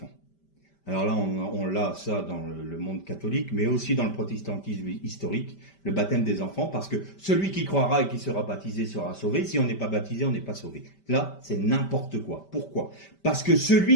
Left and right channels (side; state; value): right; late; 5.1 ms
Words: Alors là, on l'a ça dans le monde catholique, mais aussi dans le protestantisme historique, le baptême des enfants, parce que celui qui croira et qui sera baptisé sera sauvé. Si on n'est pas baptisé, on n'est pas sauvé. Là, c'est n'importe quoi. Pourquoi? Parce que